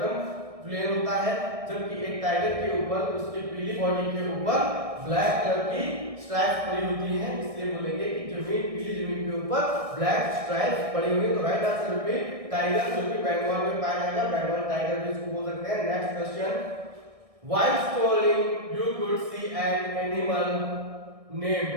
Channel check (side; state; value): left; late; 1.6 ms